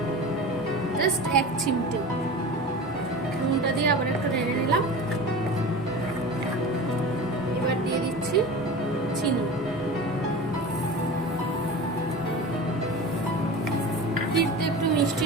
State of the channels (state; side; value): normal; both; correlation 0.33